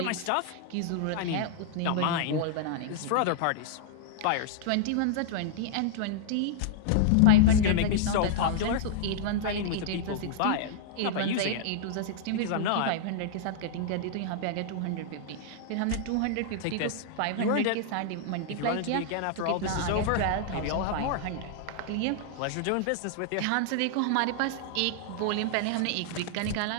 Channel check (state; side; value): different; both; correlation -0.01